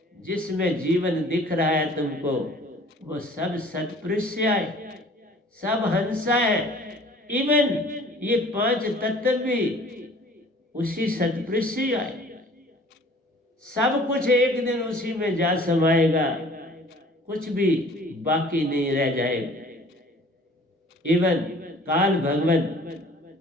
जिसमें जीवन दिख रहा है तुमको, वो सब सतपुरुष से आए, सब हंसा है। इवन ये 5 तत्व भी उसी सतपुरुष से आए। सब कुछ एक दिन उसी में जा समाएगा, कुछ भी बाकी नहीं रह जाएगा। इवन काल भगवान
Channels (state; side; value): normal; both; correlation 0.50